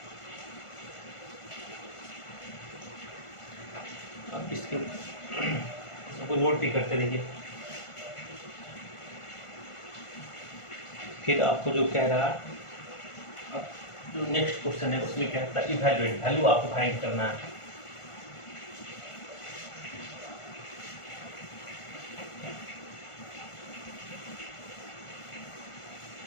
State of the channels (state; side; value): late; right; 1.5 ms